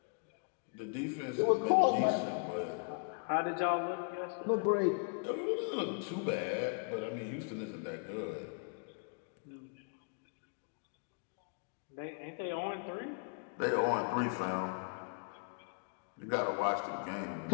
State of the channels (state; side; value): quieter; right; 38.6 dB